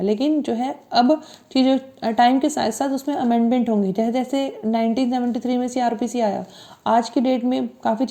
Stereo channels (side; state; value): both; identical; correlation 1.00